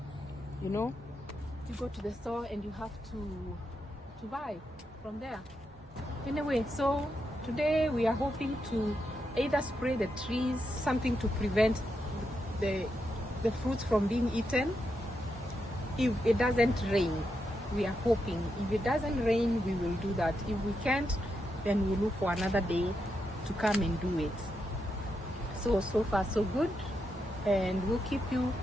you go to the store and you have to buy from there. Anyway, so today we are hoping to either spray the trees, something to prevent the fruits from being eaten, if it doesn't rain. We are hoping if it doesn't rain we will do that. If we can't, then we'll look for another day to come and do it. So far so good, and we'll keep you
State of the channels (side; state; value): both; normal; correlation 0.84